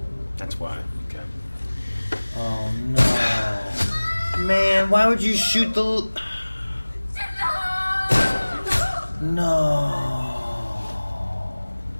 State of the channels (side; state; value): both; inverted; correlation -1.00